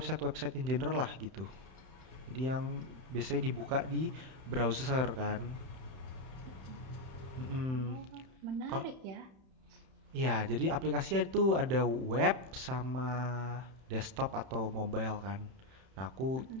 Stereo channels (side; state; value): left; late; 31 ms